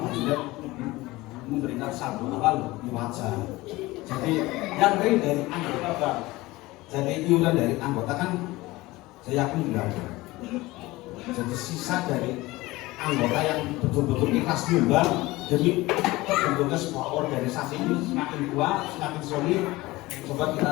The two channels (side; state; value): right; quieter; 19.9 dB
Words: Jidat memberikan saldo awal wajar. Jadi yang real dari anggota Bang. Jadi iuran dari anggota kan saya yakin tidak ada. Jadi sisa dari anggota yang betul-betul ikhlas nyumbang demi terbentuknya sebuah organisasi ini semakin kuat, semakin solid. Coba